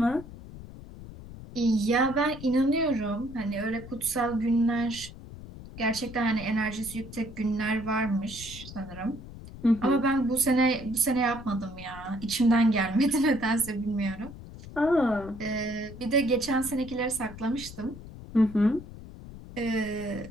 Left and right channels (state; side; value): noise; left; rumble, 14 dB below the sound